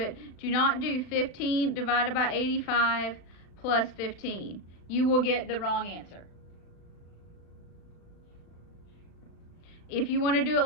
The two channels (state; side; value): late; right; 36 ms